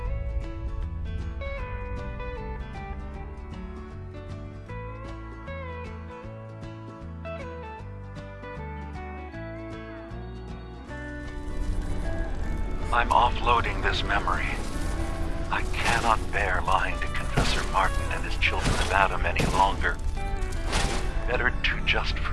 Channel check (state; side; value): identical; both; correlation 1.00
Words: I'm offloading this memory. I cannot bear lying to Confessor Martin and his children of Adam any longer. Better to just